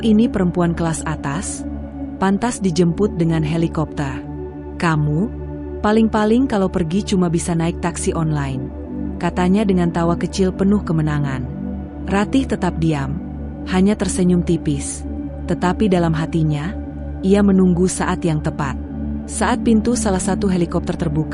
ini perempuan kelas atas, pantas dijemput dengan helikopter. Kamu, paling-paling kalau pergi cuma bisa naik taksi online," katanya dengan tawa kecil penuh kemenangan. Ratih tetap diam, hanya tersenyum tipis, tetapi dalam hatinya, ia menunggu saat yang tepat. Saat pintu salah satu helikopter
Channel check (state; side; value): identical; both; correlation 1.00